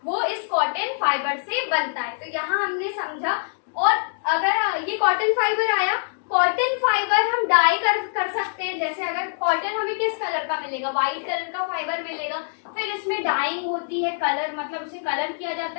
वो इस कॉटन फाइबर से बनता है। तो यहाँ हमने समझा। और अगर ये कॉटन फाइबर आया, कॉटन फाइबर हम डाई कर सकते हैं। जैसे अगर कॉटन हमें किस कलर का मिलेगा, व्हाइट कलर का फाइबर मिलेगा, फिर इसमें डाइंग होती है, कलर मतलब उसे कलर किया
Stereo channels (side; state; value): right; silent; digital silence